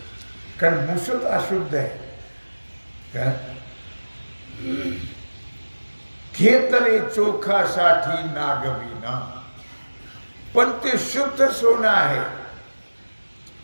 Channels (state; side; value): inverted; both; correlation -1.00